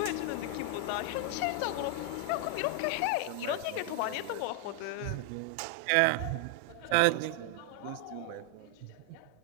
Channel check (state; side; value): different; both; correlation 0.00